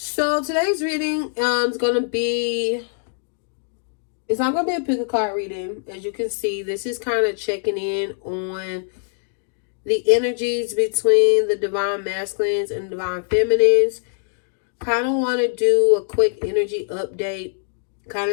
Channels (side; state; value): right; silent; digital silence